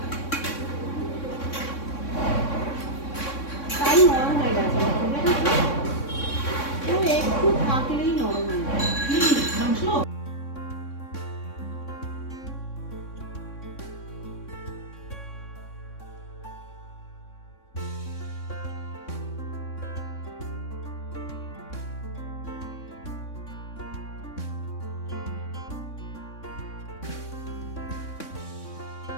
তাই নরম হয়ে গেছে, ও একটু থাকলেই নরম হয়ে যায় মাংস।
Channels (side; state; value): right; late; 3.6 ms